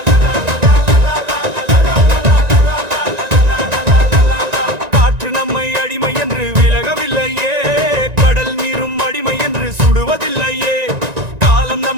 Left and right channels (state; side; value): late; left; 1.9 ms